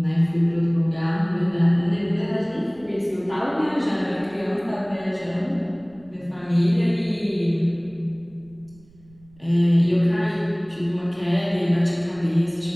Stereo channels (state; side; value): noise; right; rumble, 27 dB below the sound